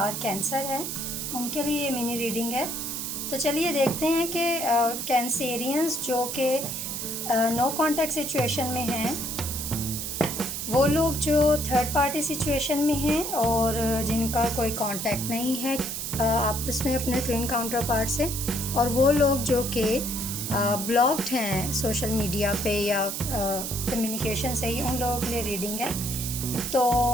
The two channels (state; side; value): noise; right; hiss, 4 dB below the sound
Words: कैंसर है उनके लिए ये मिनी रीडिंग है। तो चलिए देखते हैं कि कैंसेरियंस जो कि नो कांटेक्ट सिचुएशन में हैं, वो लोग जो थर्ड पार्टी सिचुएशन में हैं और जिनका कोई कांटेक्ट नहीं है आपस में अपने ट्विन काउंटर पार्ट से, और वो लोग जो कि ब्लॉक्ड हैं सोशल मीडिया पे या कम्युनिकेशन से ही, उन लोगों के लिए रीडिंग है। तो